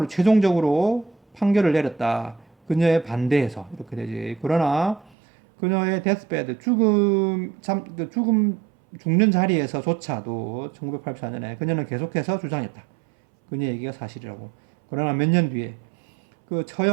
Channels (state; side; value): drops out; left; at 5.1 s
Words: 최종적으로 판결을 내렸다. 그녀의 반대해서 이렇게 되지. 그러나 그녀의 데스베드 죽음 죽는 자리에서조차도 1984년에 그녀는 계속해서 주장했다. 그녀의 얘기가 사실이라고. 그러나 몇 년 뒤에 그